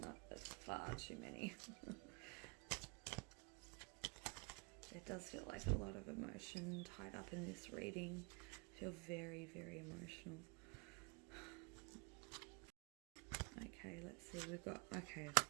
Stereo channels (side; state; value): left; quieter; 32.0 dB